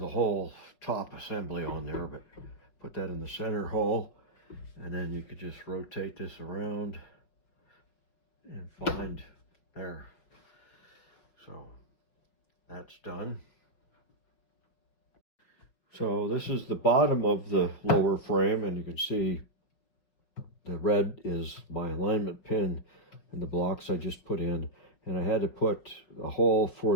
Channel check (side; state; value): right; late; 5.4 ms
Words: whole top assembly on there, but put that in the center hole, and then you could just rotate this around and find there. So that's done. So this is the bottom of the lower frame, and you can see the red is my alignment pin and the blocks I just put in. And I had to put a hole